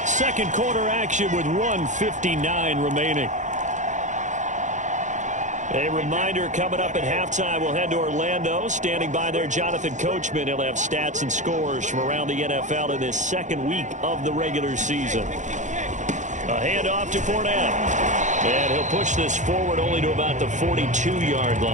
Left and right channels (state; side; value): late; left; 0.35 ms